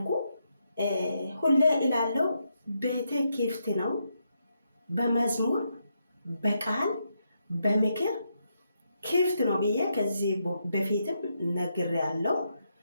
ሁሌ እላለሁ ቤቴ ክፍት ነው። በመዝሙር በቃል በምክር ክፍት ነው ብዬ ከዚህ በፊትም ነግሬያለሁ።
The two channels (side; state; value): both; inverted; correlation -0.81